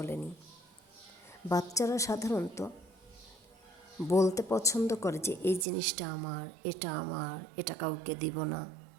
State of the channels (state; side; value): drops out; left; at 5.7 s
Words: বাচ্চারা সাধারণত বলতে পছন্দ করে যে এই জিনিসটা আমার, এটা কাউকে দিব না।